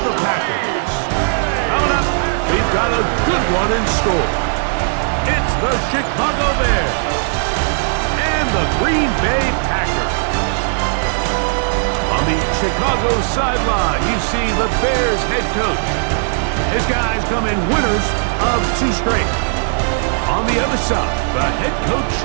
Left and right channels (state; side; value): silent; left; digital silence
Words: the Packers. Coming up, we've got a good one in store. It's the Chicago Bears and the Green Bay Packers. On the Chicago sideline, you see the Bears head coach. His guys come in winners of 2 straight. On the other side, the head coach